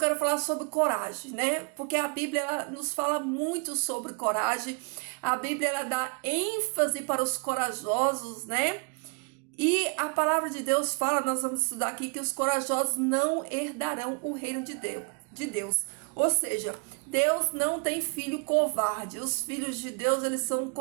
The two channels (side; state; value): left; quieter; 35.6 dB